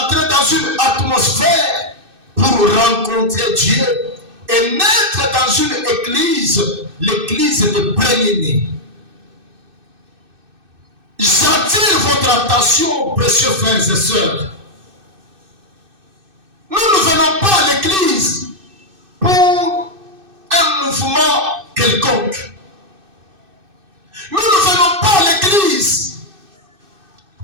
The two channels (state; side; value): late; left; 2.6 ms